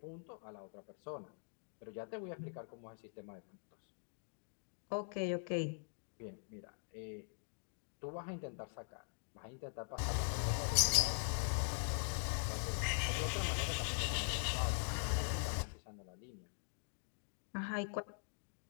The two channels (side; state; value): right; silent; digital silence